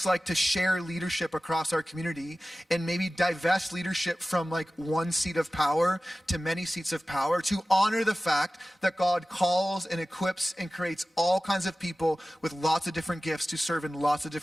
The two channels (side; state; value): both; normal; correlation 0.96